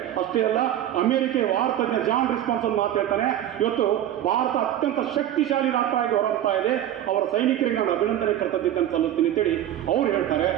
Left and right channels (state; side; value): quieter; left; 11.8 dB